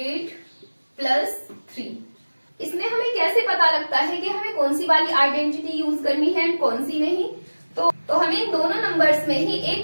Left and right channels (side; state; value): both; inverted; correlation -1.00